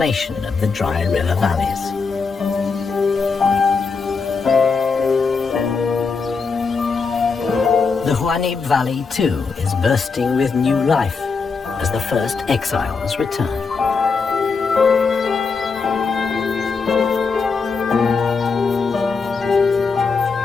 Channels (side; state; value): right; quieter; 4.9 dB